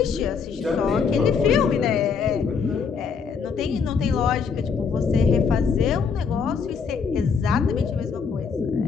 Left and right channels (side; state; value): right; quieter; 5.9 dB